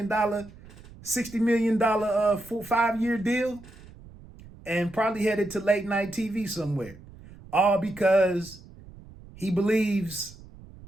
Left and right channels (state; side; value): noise; right; rumble, 20 dB below the sound